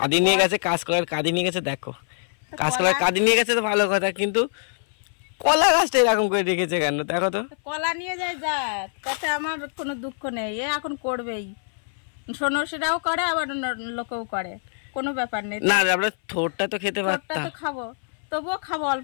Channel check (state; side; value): silent; right; 58 dB below the other